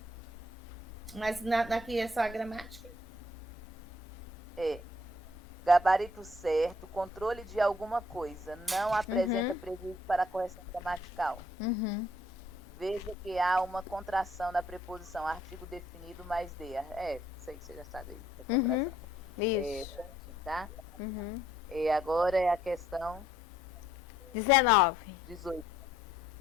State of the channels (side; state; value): both; normal; correlation 0.65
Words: Mas aqui é só a gramática? Gabarito certo, controle de alguma coisa, não apresenta prejuízo para a correção gramatical. Veja que há uma contração da preposição artigo definido mais de. Sei que você já sabe. Isso. Tá? E agora é a questão 19. 18.